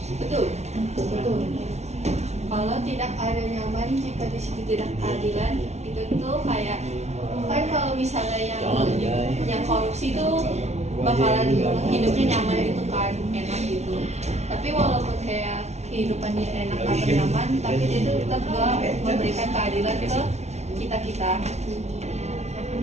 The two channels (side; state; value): left; late; 0.32 ms